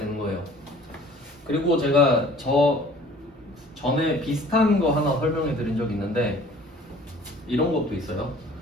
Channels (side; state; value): both; normal; correlation 0.50